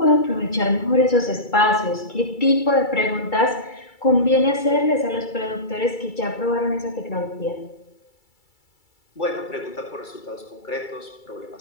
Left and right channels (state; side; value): late; right; 2.3 ms